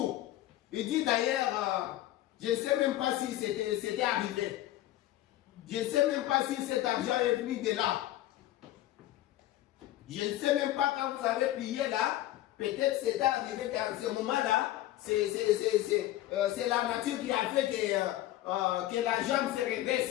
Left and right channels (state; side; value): quieter; right; 14.7 dB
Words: Il dit d'ailleurs, je ne sais même pas si c'était arrivé. Je ne sais même pas si cet argent est venu de là. Je ne sais même pas quand vous avez prié là, peut-être c'était arrivé qu'à ce moment-là, c'est la nature qui a fait que la jambe se